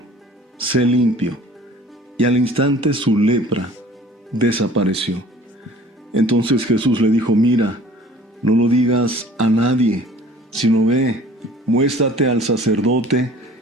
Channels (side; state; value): both; normal; correlation 0.49